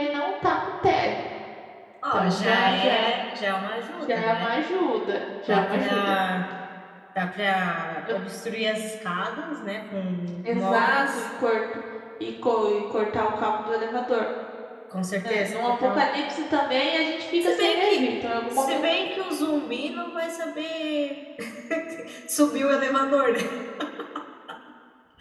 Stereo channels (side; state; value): both; identical; correlation 1.00